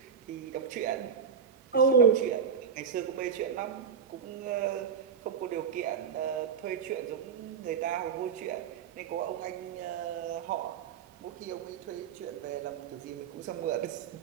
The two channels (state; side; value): quieter; left; 7.0 dB